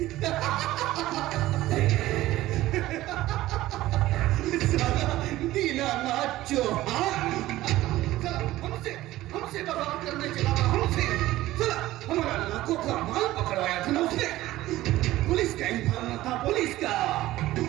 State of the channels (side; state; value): left; quieter; 16.1 dB